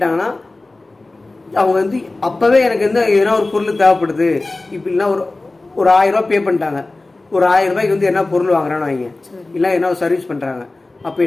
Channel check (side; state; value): right; quieter; 3.1 dB